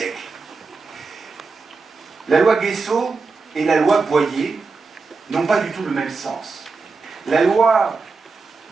La loi Guessot et la loi Boyer n'ont pas du tout le même sens. La loi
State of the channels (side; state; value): left; quieter; 4.3 dB